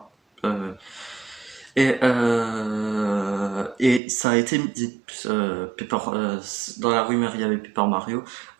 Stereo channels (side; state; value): left; drops out; at 4.0 s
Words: Euh, et ça a été dit, dans la rumeur il y avait Paper Mario.